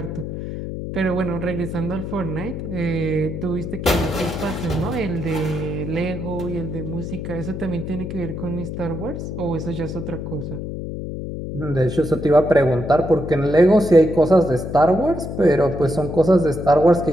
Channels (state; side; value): noise; left; hum, 6 dB below the sound